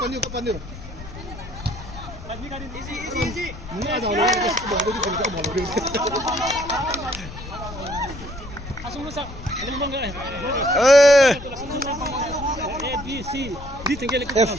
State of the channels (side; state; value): left; noise; rumble, 13 dB below the sound